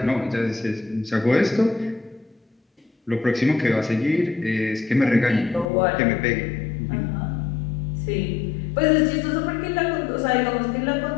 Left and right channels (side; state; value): right; drops out; at 5.7 s